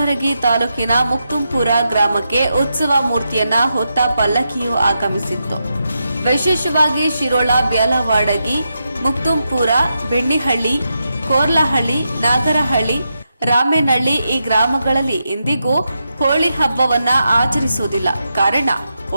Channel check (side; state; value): both; inverted; correlation -0.86